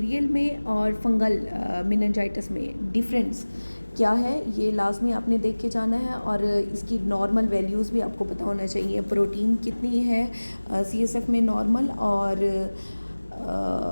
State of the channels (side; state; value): both; inverted; correlation -1.00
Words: में और फंगल मेनिंजाइटिस में डिफरेंस क्या है, ये लाजमी आपने देख के जाना है। और इसकी नॉर्मल वैल्यूज़ भी आपको पता होना चाहिए, प्रोटीन कितनी है CSF में नॉर्मल, और